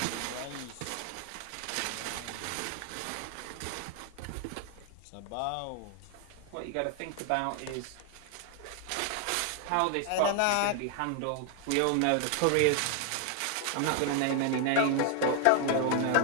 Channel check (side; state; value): both; different; correlation 0.00